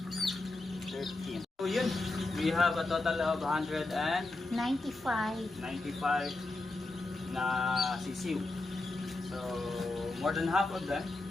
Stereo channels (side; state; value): right; quieter; 3.1 dB